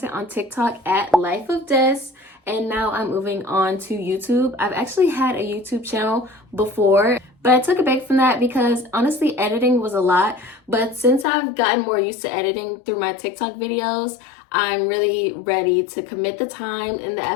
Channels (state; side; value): drops out; right; at 11.2 s